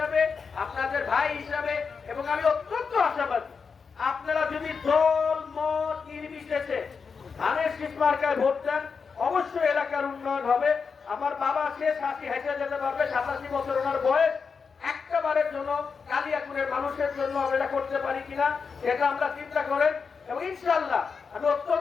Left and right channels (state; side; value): quieter; right; 5.5 dB